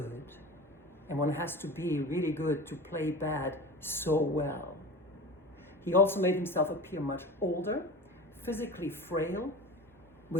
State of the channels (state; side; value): normal; both; correlation 0.33